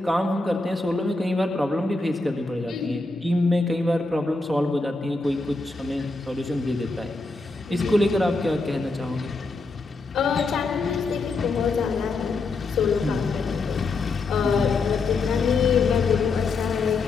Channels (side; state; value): right; quieter; 3.5 dB